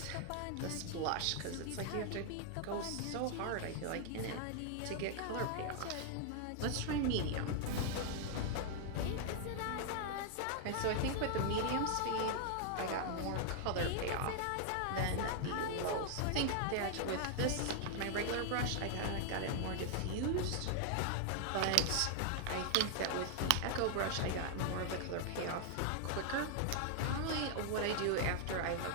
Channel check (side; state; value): both; different; correlation 0.00